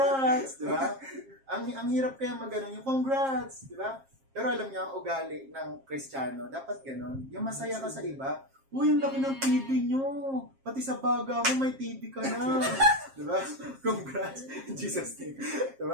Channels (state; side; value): late; left; 7.5 ms